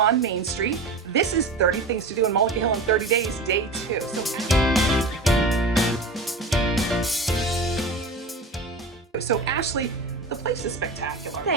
Main Street. This is 30 Things to Do in Mullica Hill in 30 Days, Day 2. So Ashley, the place is spectacular.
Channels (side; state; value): left; quieter; 3.2 dB